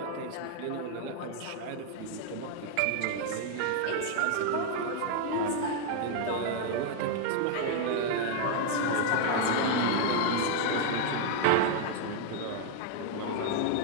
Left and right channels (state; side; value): different; both; correlation 0.00